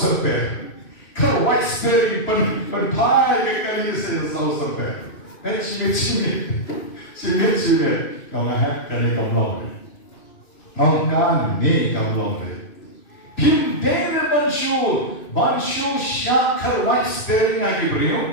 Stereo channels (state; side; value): late; right; 2.5 ms